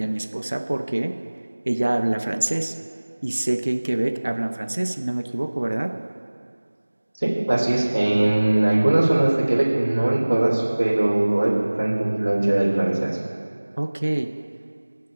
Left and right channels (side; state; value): both; inverted; correlation -1.00